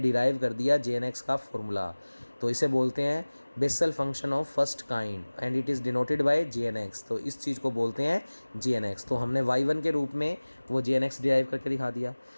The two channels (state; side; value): inverted; both; correlation -1.00